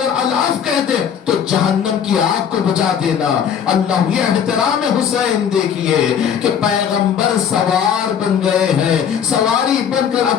अल-आफ कहते तो जहन्नम की आग को बुझा देना। अल्लाह, ये एहतराम हुसैन देखिए कि पैगंबर सवार बन गए हैं, सवारी बनकर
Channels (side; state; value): right; quieter; 8.1 dB